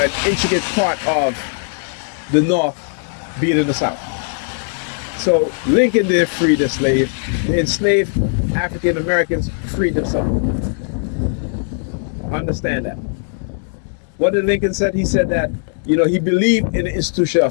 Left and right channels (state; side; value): silent; right; digital silence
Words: intricate part of the North being in the South. So Lincoln didn't free the slave. The enslaved African Americans freed themselves. Understand that. What did Lincoln said? He said that, he believed in the institution